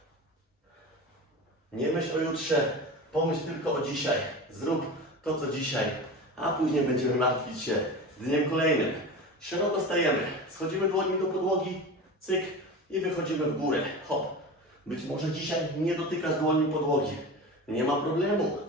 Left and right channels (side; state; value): both; normal; correlation 0.30